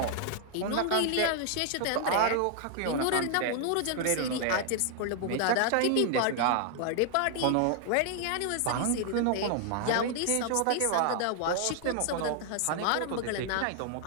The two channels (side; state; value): both; different; correlation 0.00